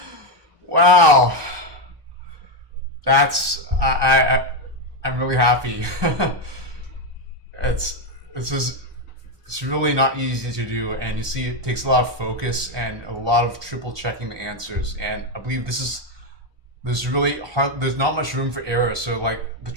Wow, that's I'm really happy. It's really not easy to do, and you see it takes a lot of focus and a lot of triple checking the answers. And I believe there's really hard. There's not much room for error, so like the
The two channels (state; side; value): late; left; 1.2 ms